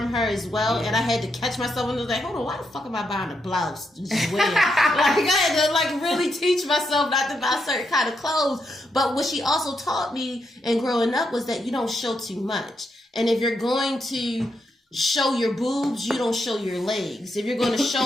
her as well, and I had to catch myself and was like, hold on, why the fuck am I buying a blouse to just wear? Like I had to really teach myself not to buy certain kind of clothes. But what she also taught me and growing up was that you don't show too much. And if you're going to show your boobs, you don't show your legs. If you're going to show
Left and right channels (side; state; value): both; normal; correlation 0.81